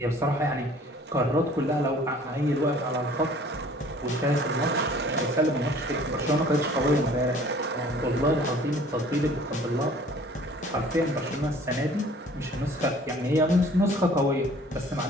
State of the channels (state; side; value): normal; both; correlation 0.52